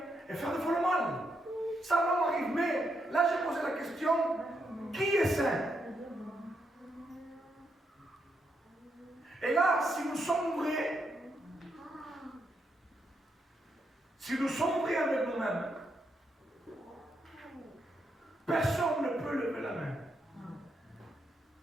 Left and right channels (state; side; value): normal; both; correlation 0.80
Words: et faire des fois le mal. Ça l'homme arrive. Mais là, j'ai posé la question, qui est saint? Et là, si nous sommes vrais, avec nous-mêmes, personne ne peut lever la main.